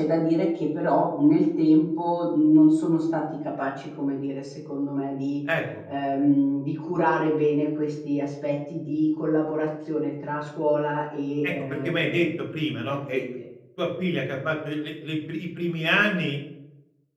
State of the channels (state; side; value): identical; both; correlation 1.00